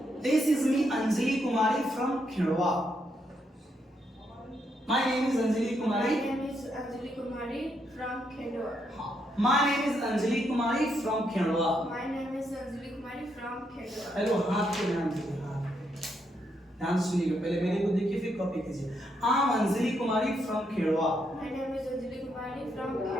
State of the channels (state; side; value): normal; both; correlation 0.78